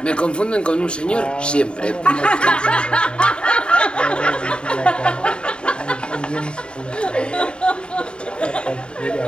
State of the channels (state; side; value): late; right; 0.052 ms